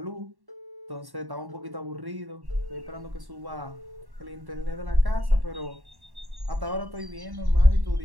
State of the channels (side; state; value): left; late; 1.1 ms